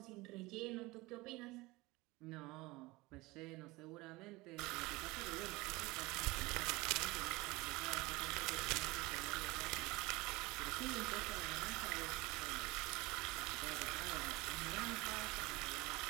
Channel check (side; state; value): left; quieter; 22.7 dB